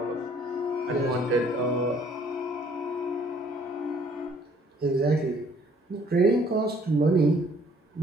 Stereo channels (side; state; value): both; normal; correlation 0.60